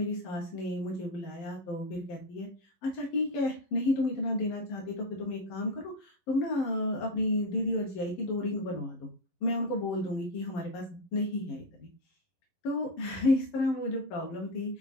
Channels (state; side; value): late; right; 11 ms